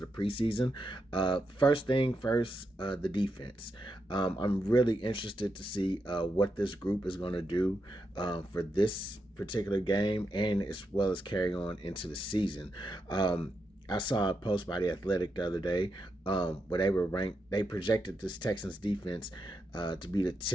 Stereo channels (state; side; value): normal; both; correlation 0.85